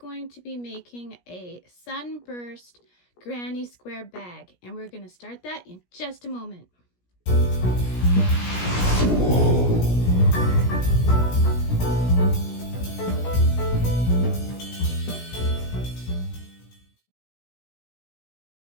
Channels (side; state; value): right; late; 17 ms